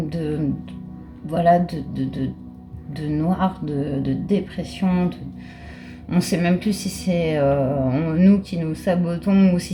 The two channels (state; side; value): identical; both; correlation 1.00